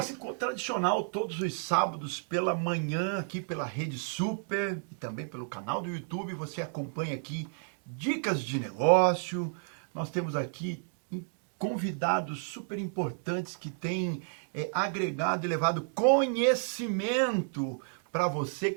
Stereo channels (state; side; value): silent; left; 57 dB below the other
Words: ficou tradicional todos os sábados pela manhã aqui pela Rede Super e também pelo canal do YouTube. Você acompanha aqui dicas de negócio. Nós temos aqui convidados super importantes que têm agregado e levado conhecimento para você